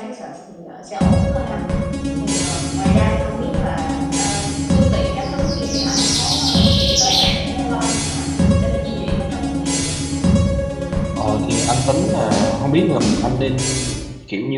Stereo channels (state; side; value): identical; both; correlation 1.00